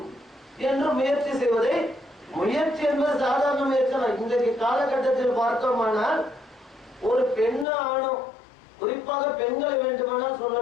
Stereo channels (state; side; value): drops out; right; at 7.7 s